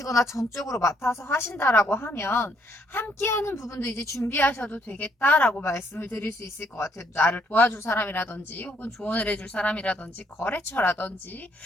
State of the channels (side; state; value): both; normal; correlation 0.70